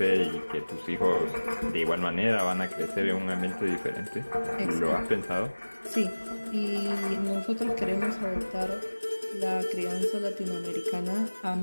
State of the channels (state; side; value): inverted; both; correlation -1.00